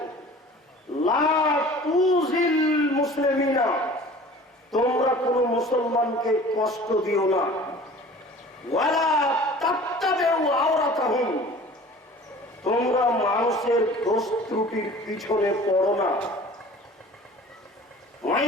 লা তুযিল মুসলিমিনা, তোমরা কোন মুসলমানকে কষ্ট দিও না। ওয়ালা তাত্তাবিউ আওরাতাহুম, তোমরা মানুষের দোষ ত্রুটির পিছনে পড়ো না। ওয়াই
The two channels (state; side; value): normal; both; correlation 0.44